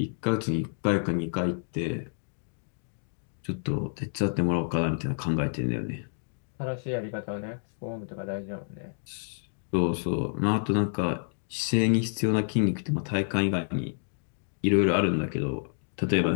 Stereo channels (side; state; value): right; silent; digital silence